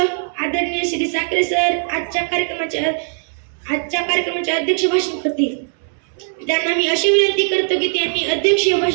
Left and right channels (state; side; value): silent; left; 66 dB below the other